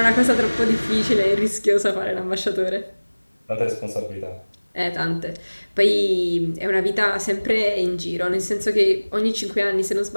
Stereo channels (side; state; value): both; inverted; correlation -1.00